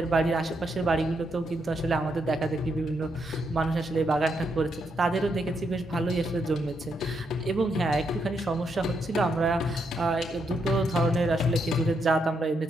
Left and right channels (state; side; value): normal; both; correlation 0.79